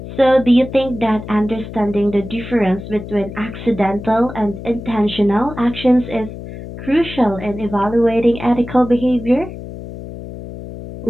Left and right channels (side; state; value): left; noise; hum, 11 dB below the sound